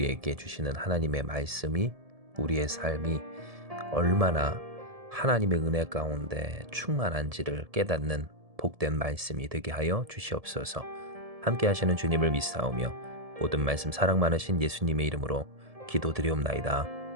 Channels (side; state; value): left; late; 1.7 ms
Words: 주시는 하나님의 말씀이 우리의 삶이 얼마나 하나님의 은혜 가운데 충만한지를 깨닫는 복된 말씀이 되게 하여 주시옵소서. 함께 하시는 주님을 믿사오며 모든 말씀 사랑 많으신 예수님의 이름으로 기도드리옵나이다.